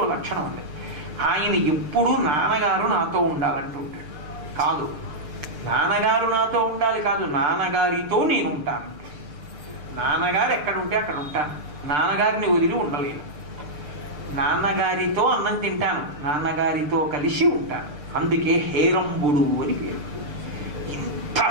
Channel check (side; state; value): left; late; 6.8 ms